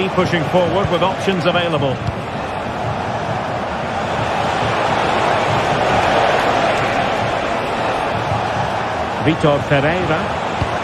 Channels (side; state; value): both; identical; correlation 1.00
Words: pushing forward with options available. Vitor Ferreira.